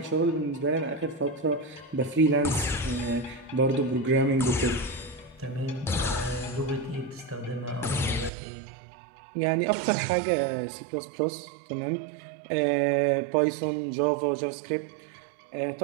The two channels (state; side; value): drops out; left; at 8.3 s